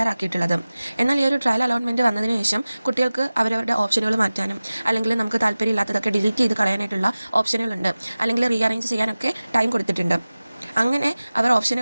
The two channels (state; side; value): inverted; both; correlation -0.97